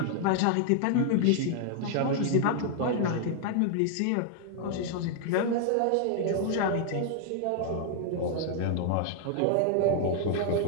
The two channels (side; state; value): both; different; correlation 0.00